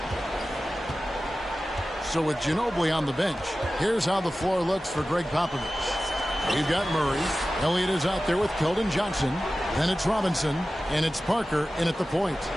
So with Ginobili on the bench, here's how the floor looks for Greg Popovich. We've got Murray. Elliott is out there with Keldon Johnson. Then it's Robinson. And it's Parker in at the point.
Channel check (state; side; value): normal; both; correlation 0.95